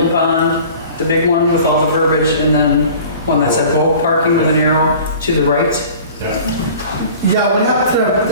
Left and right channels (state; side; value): inverted; both; correlation -0.44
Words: Pond, the big one with all the verbiage, and then one that said boat parking with an arrow to the right. Yeah, what